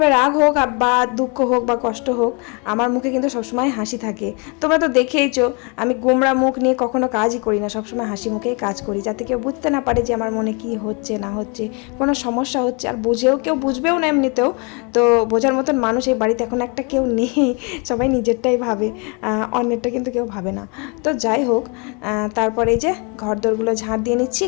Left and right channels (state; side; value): quieter; right; 33.1 dB